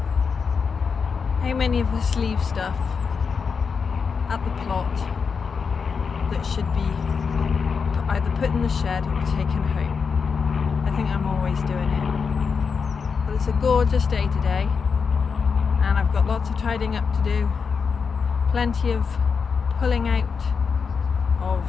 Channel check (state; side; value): quieter; right; 5.7 dB